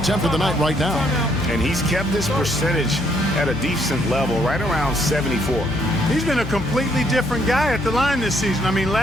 of the night right now. And he's kept this percentage at a decent level, right around 74. He's been a completely different guy at the line this season. I mean,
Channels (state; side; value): noise; left; hum, 9 dB below the sound